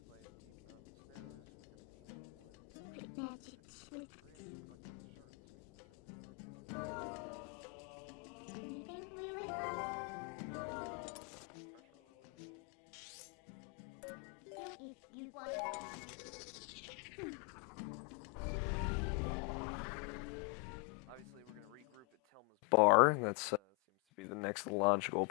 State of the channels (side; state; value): right; quieter; 30.2 dB